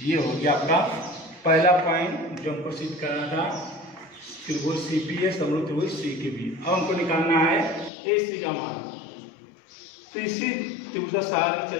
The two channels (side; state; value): right; drops out; at 7.9 s